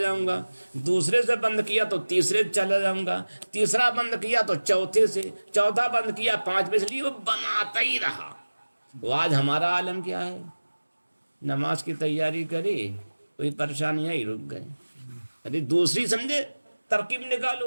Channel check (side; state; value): both; inverted; correlation -1.00